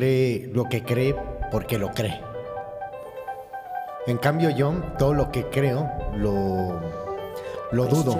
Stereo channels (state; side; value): identical; both; correlation 1.00